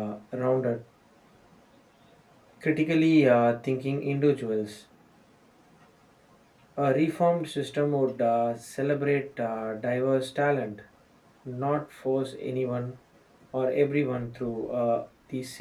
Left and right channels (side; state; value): both; identical; correlation 1.00